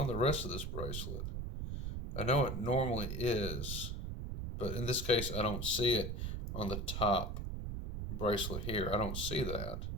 the rest of this bracelet. I know it normally is, but in this case, I don't see it on the top bracelet here. I don't see that.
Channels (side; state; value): right; noise; rumble, 4 dB below the sound